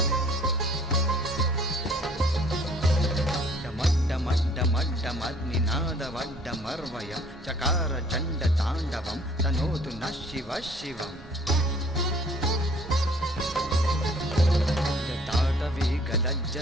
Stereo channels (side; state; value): right; noise; rumble, 21 dB below the sound